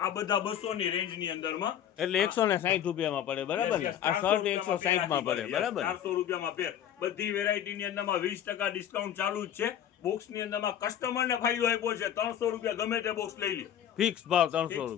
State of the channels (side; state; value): right; quieter; 10.2 dB